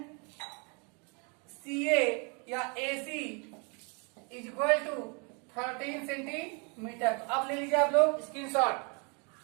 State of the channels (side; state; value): left; quieter; 34.4 dB